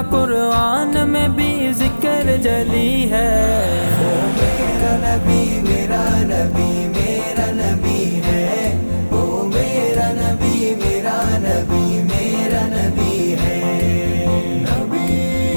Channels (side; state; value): both; inverted; correlation -1.00